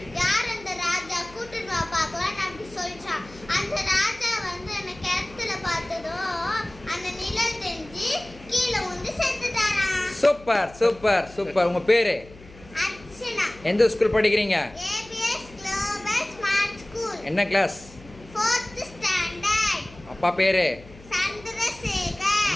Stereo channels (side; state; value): left; noise; hum, 21 dB below the sound